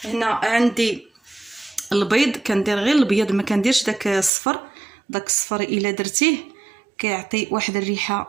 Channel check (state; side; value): drops out; left; at 4.3 s